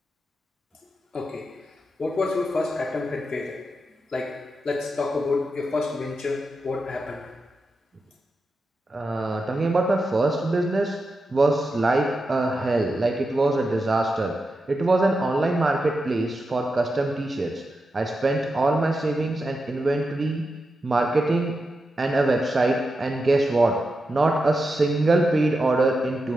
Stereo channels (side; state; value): both; normal; correlation 0.88